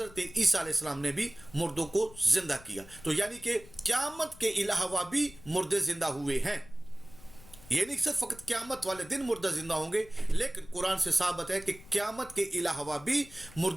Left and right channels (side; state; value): left; noise; rumble, 21 dB below the sound